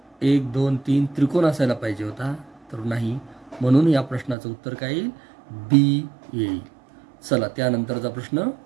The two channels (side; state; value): left; drops out; at 4.4 s